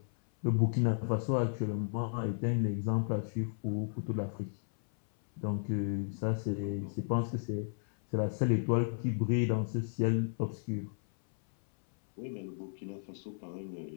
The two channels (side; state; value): right; silent; 55 dB below the other